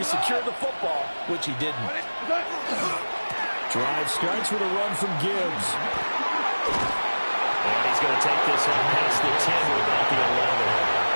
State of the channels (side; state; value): both; inverted; correlation -1.00